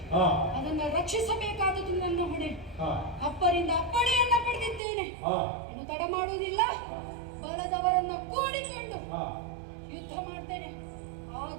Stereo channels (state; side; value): drops out; left; at 4.8 s